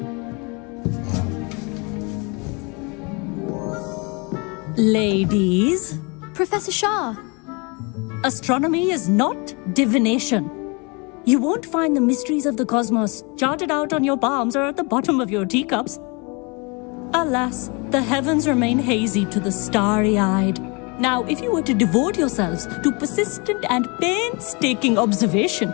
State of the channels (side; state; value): right; quieter; 30.3 dB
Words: Ladies, Professor Shah. astronomy is not divination. You won't find the mysteries of the cosmos charted out on your palms or at the bottom of your teacups. Alas, the heavens remain hazy to the starry-eyed. Now, if you were to devote yourselves to persistent and painstaking observation,